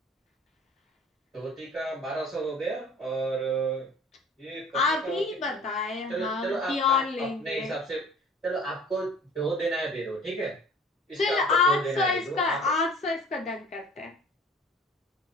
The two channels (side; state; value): both; normal; correlation 0.47